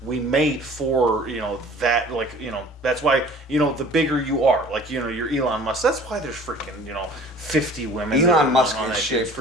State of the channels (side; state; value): both; normal; correlation 0.48